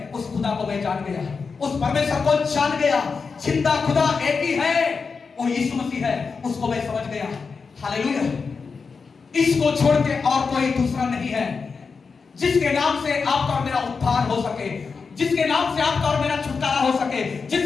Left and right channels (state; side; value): quieter; right; 5.0 dB